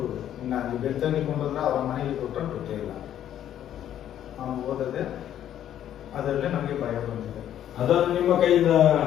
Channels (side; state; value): right; quieter; 10.9 dB